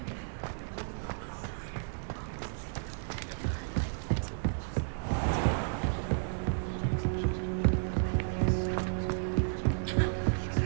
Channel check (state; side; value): silent; left; digital silence